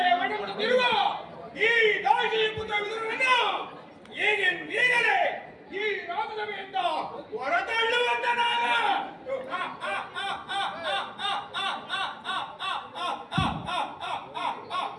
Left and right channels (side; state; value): both; identical; correlation 1.00